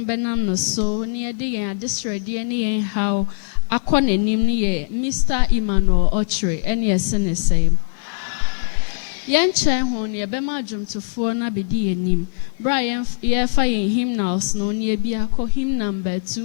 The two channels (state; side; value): silent; right; 65 dB below the other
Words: benam no so ni ede yen adesrede ni yen how akọ nanim ni ye Mr. Emmauel Okyere ene ese ne sen yen chen ho ni ebema adwumtofo na bedi yenim bra ye fa yen hymnals no ni ebi akọ hymn number